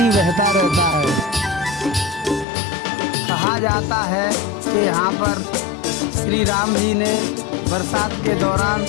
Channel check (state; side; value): drops out; right; at 2.5 s